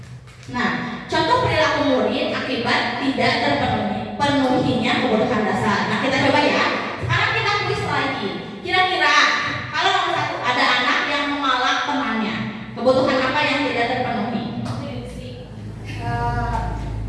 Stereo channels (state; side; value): identical; both; correlation 1.00